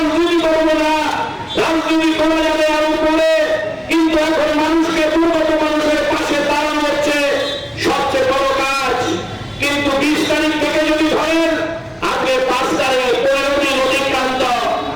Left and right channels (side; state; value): both; identical; correlation 1.00